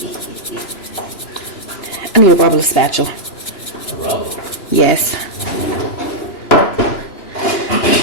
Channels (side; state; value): right; late; 2.9 ms